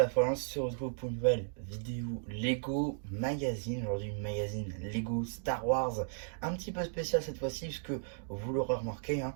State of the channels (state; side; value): silent; left; digital silence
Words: fois, on se retrouve pour une nouvelle vidéo Lego Magazine. Aujourd'hui, une magazine Lego Star Wars, un petit peu spécial cette fois-ci, puisque vous l'aurez remarqué, hein,